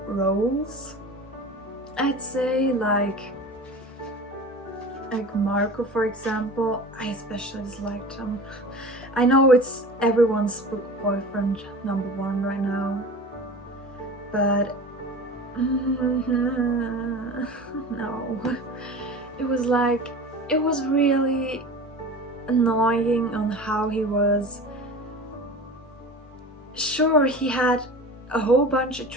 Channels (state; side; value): normal; both; correlation 0.35